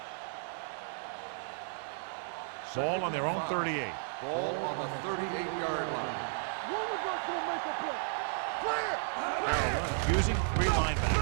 Ball on their own 38. Ball on the 38-yard line. One of us gonna make a play. Carolina using three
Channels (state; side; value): silent; left; digital silence